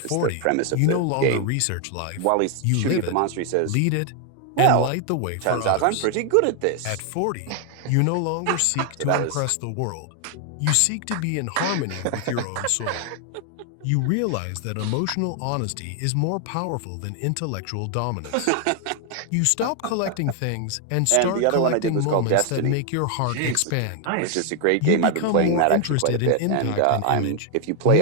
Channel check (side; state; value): both; different; correlation 0.00